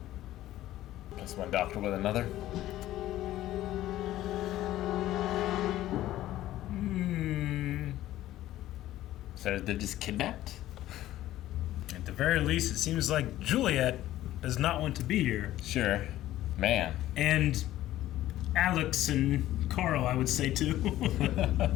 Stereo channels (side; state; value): right; quieter; 14.4 dB